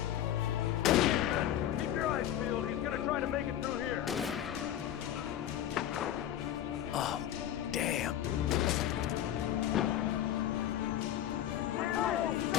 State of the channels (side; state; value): right; quieter; 11.5 dB